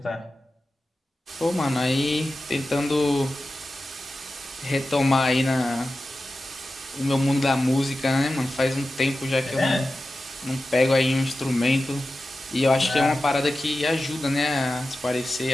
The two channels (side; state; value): both; normal; correlation 0.94